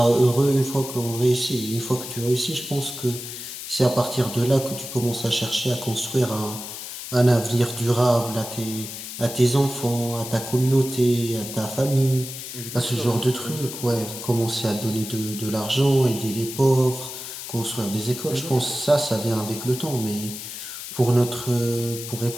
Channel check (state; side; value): noise; left; hiss, 9 dB below the sound